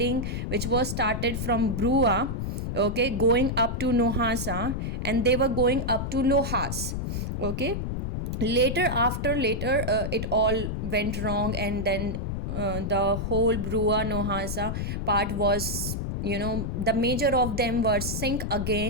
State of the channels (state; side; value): noise; left; rumble, 3 dB below the sound